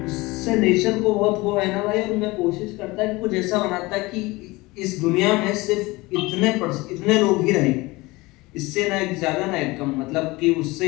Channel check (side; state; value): right; quieter; 22.0 dB